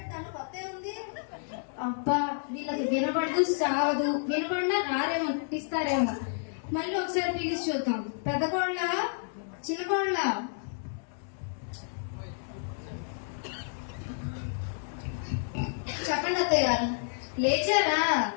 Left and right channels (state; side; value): silent; right; digital silence